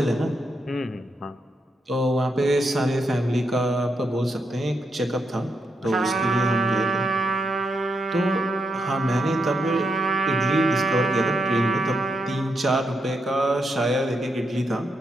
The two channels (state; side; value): normal; both; correlation 0.82